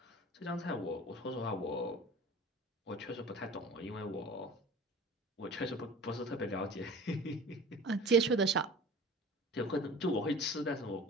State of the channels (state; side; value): normal; both; correlation 0.41